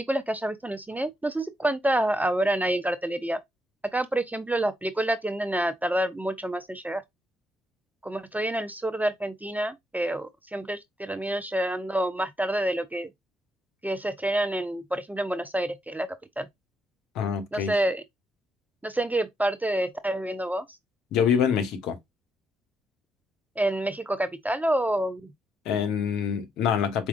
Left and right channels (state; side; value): normal; both; correlation 0.77